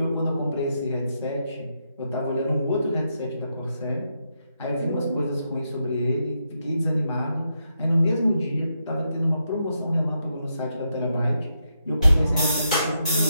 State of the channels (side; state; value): both; inverted; correlation -0.82